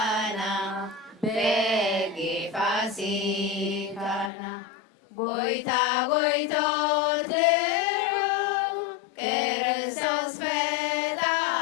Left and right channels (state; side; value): drops out; right; at 4.3 s